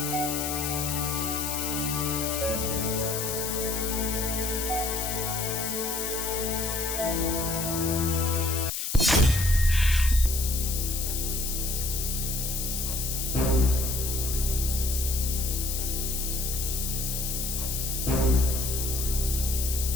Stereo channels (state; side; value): noise; left; hiss, 3 dB below the sound